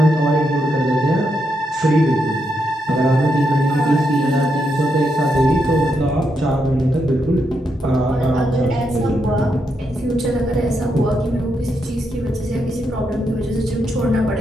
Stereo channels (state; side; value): normal; both; correlation 0.81